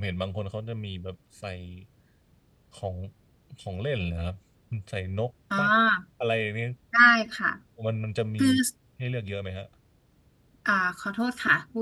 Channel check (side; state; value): both; identical; correlation 1.00